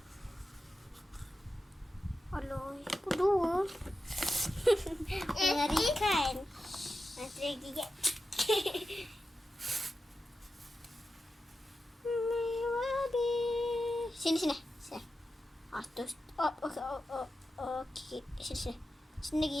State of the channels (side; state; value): both; normal; correlation 0.91